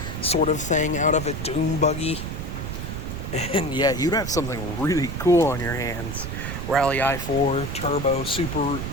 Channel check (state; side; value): noise; right; rumble, 6 dB below the sound